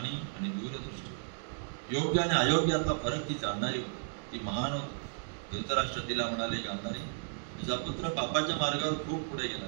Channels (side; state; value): left; silent; digital silence